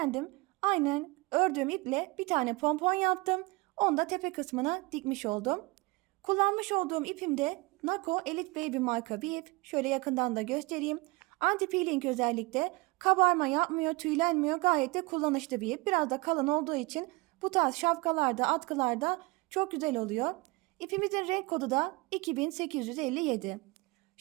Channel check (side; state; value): left; quieter; 25.0 dB